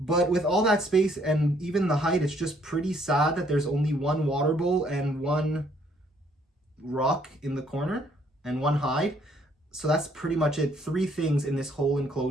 But with all that space and even the height, it's just pretty sad that there's only one water bowl and one rock in the corner and one hide. So that's pretty much it. Three things in this whole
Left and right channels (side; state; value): both; normal; correlation 0.66